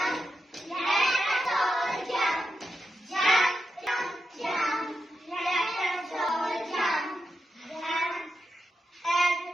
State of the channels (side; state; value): both; normal; correlation 0.87